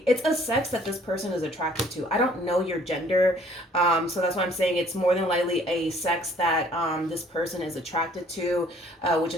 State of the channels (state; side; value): normal; both; correlation 0.58